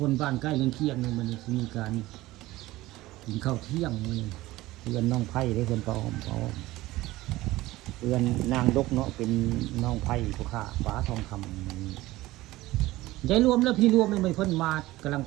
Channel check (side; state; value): left; quieter; 17.8 dB